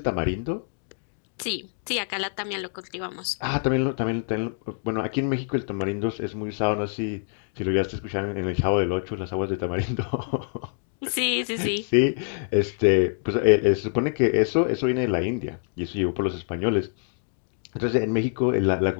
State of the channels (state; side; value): silent; right; digital silence